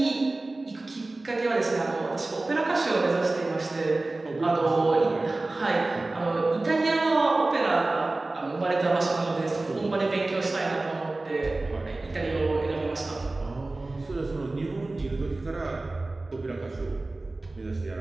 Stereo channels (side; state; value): left; quieter; 3.0 dB